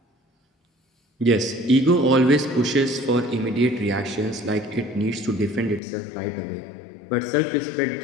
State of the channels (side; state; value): right; drops out; at 5.8 s